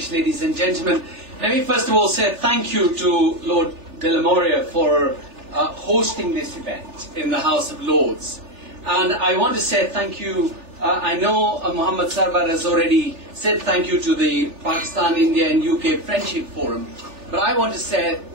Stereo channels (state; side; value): late; left; 3.4 ms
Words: ladies and gentlemen, let me first of all say thank you to Lord de la Moria for hosting this event in the House of Lords. And I want to say thank you. I know Muhammad Sarwar has already said thank you to the Pakistan, India and UK Friendship Forum. But I want to say a